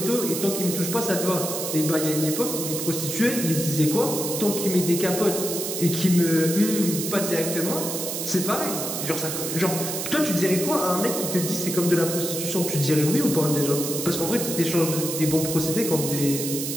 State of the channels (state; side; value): noise; right; hiss, 4 dB below the sound